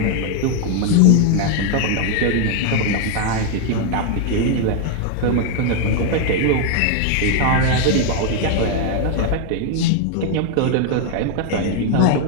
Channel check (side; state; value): both; different; correlation 0.00